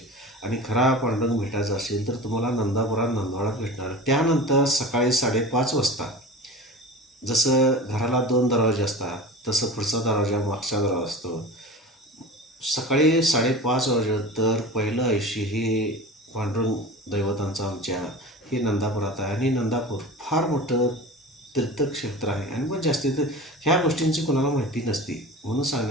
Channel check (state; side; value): normal; both; correlation 0.34